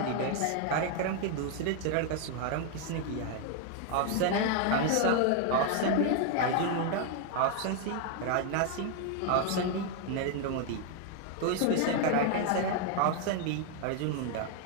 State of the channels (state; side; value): different; both; correlation 0.01